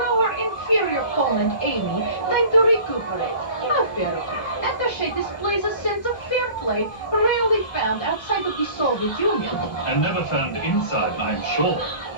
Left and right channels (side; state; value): right; late; 1.5 ms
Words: her inferior opponent, Amy, time to recuperate. How fair of her. Attache displays a sense of fair play rarely found outside of the Soviet Union. And never found inside, I'm sure.